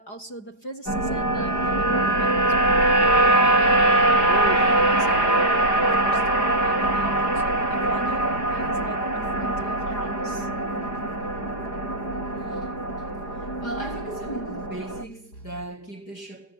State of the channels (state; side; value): late; right; 4.9 ms